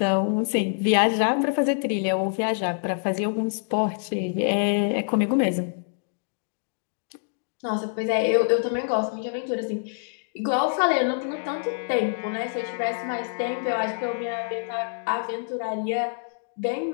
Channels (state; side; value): silent; right; digital silence